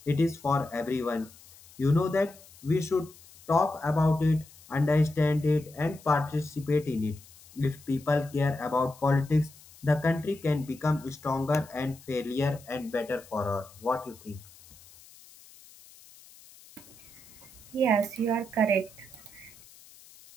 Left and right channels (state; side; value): noise; left; hiss, 23 dB below the sound